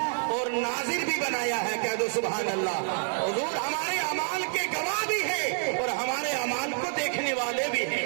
اور ناظر بھی بنایا ہے، کہہ دو سبحان اللہ۔ حضور ہمارے اعمال کے گواہ بھی ہیں اور ہمارے اعمال کو دیکھنے والے بھی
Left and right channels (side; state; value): left; silent; 59 dB below the other